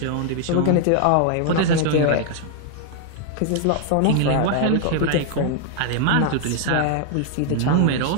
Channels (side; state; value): both; different; correlation 0.00